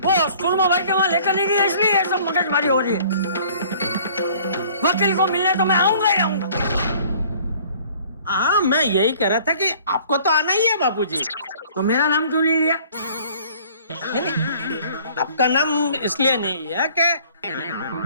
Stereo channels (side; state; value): both; inverted; correlation -0.53